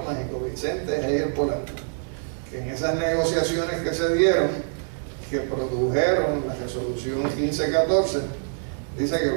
mágico, Vicente Heijer Polanco, que en esas negociaciones que se dieron, que produjeron la resolución 1514, dice que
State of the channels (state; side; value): silent; left; 62 dB below the other